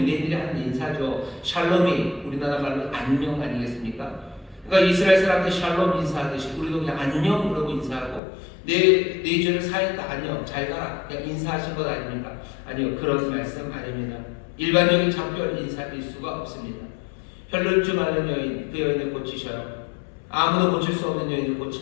하는 인사죠. 샬롬이 우리나라 말로 안녕 아니겠습니까? 그러니까 이스라엘 사람들 샬롬 인사하듯이 우리도 그냥 안녕 그러고 인사하고 내 죄를 사했다 안녕 잘 가라 그냥 인사하신 것 아닙니까? 아니요, 그런 말씀 아닙니다. 일반적인 작별 인사일 수가 없습니다. 혈루증 앓는 여인, 그 여인을 고치셔요. 아무도 고칠 수 없는 여인을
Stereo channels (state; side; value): drops out; right; at 8.2 s